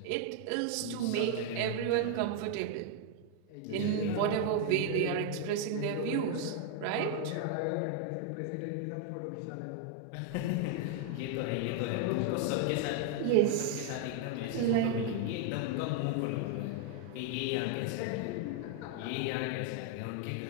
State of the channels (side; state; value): both; different; correlation 0.00